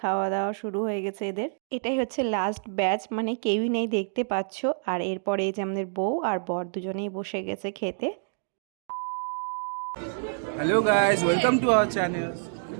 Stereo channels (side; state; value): left; silent; digital silence